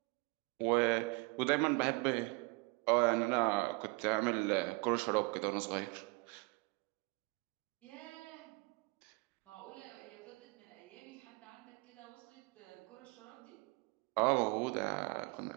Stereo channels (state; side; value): quieter; left; 27.0 dB